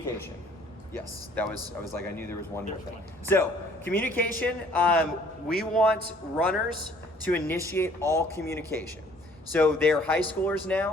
Yes, I knew there was one more thing. So, communication, we want runners to initiate all communication. So they're high schoolers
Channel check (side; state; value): both; normal; correlation 0.57